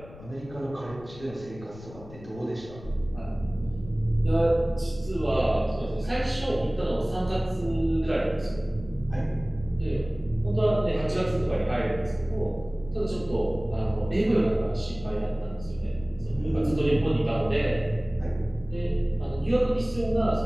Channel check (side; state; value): left; noise; rumble, 17 dB below the sound